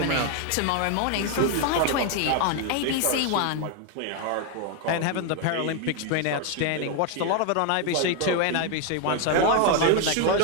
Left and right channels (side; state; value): both; different; correlation 0.01